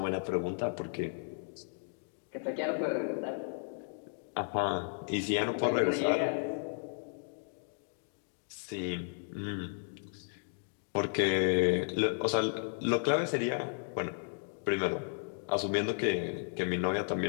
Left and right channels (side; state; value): right; silent; digital silence